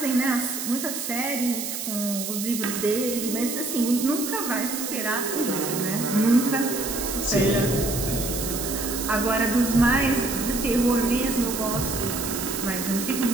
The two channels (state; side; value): noise; right; hiss, 5 dB below the sound